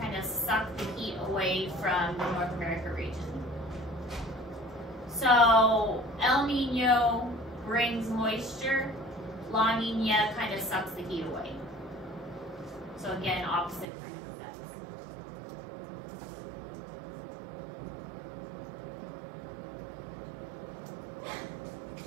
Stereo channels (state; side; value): drops out; left; at 13.9 s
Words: kind of suck the heat away from the North America region. So El Nino brings moisture, La Nina kind of sucks the heat away. So again, opposite kind of effects.